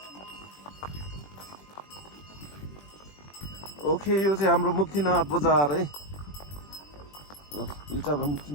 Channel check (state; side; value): late; right; 20 ms